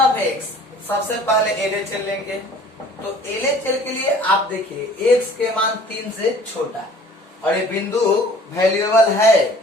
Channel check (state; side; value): normal; both; correlation 0.51